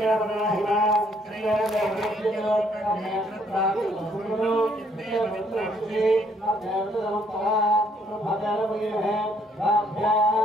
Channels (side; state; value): both; normal; correlation 0.67